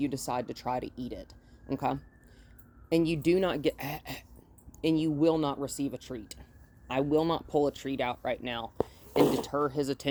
decide to try to eat it, okay? And you do not get... and you will not receive a treat. I will not pull a treat out right now and deter his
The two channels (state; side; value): identical; both; correlation 1.00